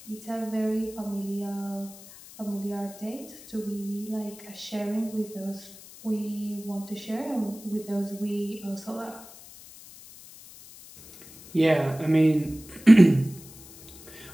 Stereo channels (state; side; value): noise; left; hiss, 19 dB below the sound